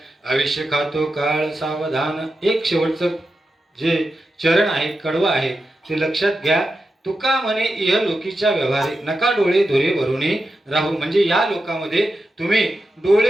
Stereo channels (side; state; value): both; normal; correlation 0.89